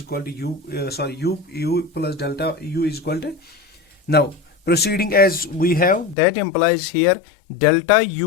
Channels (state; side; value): drops out; right; at 6.2 s